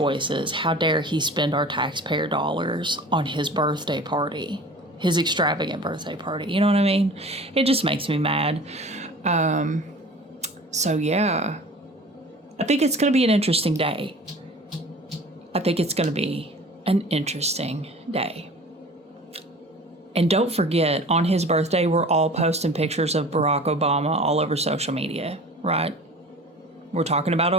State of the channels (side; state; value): both; normal; correlation 0.41